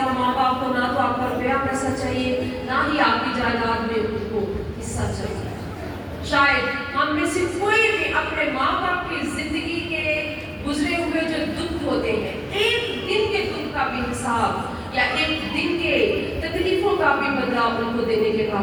माँ बाप को ना तो आपका रुपया पैसा चाहिए, ना ही आपकी जायदाद में उनको हिस्सा चाहिए। शायद हम में से कोई भी अपने माँ बाप की जिंदगी के गुजरे हुए जो दुख होते हैं, एक दिन के दुख का भी हिसाब या एक दिन के तकलीफों का भी बदला उनको देने के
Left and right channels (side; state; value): both; identical; correlation 1.00